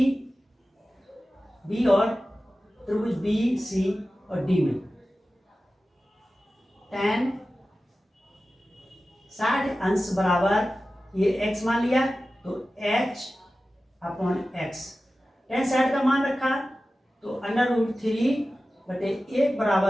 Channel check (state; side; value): normal; both; correlation 0.95